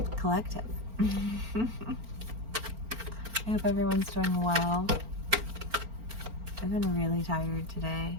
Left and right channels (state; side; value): late; left; 4.4 ms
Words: Collective. I hope everyone's doing well. I've been really tired today.